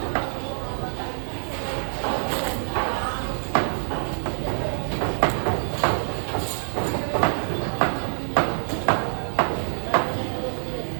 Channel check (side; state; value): left; silent; digital silence